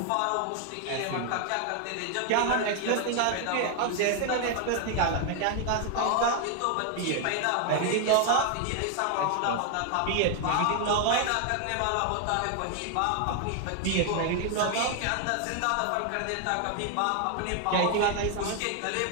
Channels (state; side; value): different; both; correlation 0.00